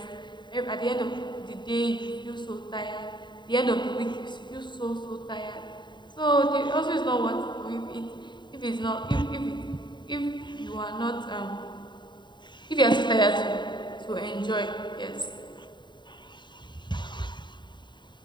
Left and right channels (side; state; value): right; late; 0.22 ms